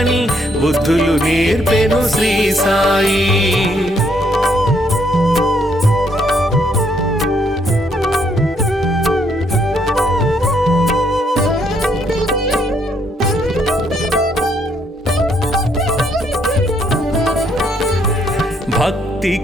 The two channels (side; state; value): both; normal; correlation 0.71